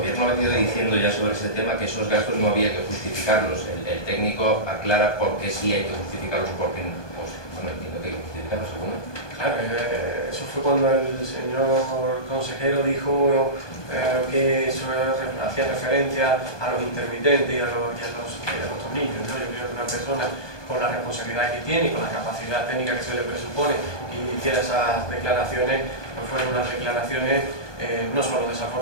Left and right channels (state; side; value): late; right; 1.2 ms